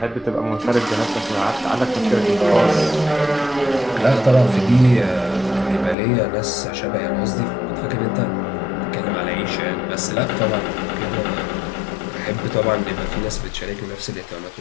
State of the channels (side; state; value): right; drops out; at 6.0 s